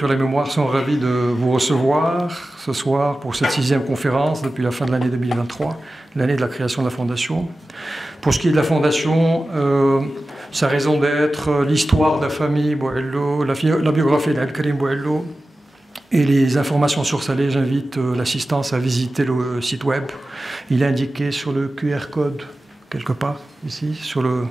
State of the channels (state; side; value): normal; both; correlation 0.95